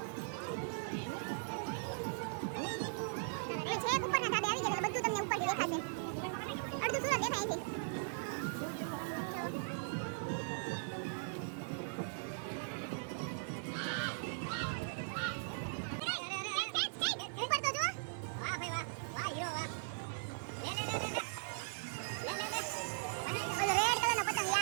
અમે છેક ઉપરના ધાબે આવી ગયા એટલે બધું તમને ઉપરથી દેખાશે. અડધું સુરત દેખાય છે. ઉપર તો જો. વાહ ભાઈ વાહ. વાહ હીરો વાહ. લે ઓલો રેડ કલરનો પતંગ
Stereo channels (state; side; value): silent; left; 52 dB below the other